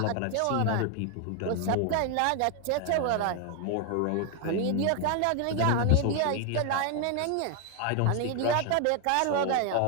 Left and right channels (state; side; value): different; both; correlation 0.01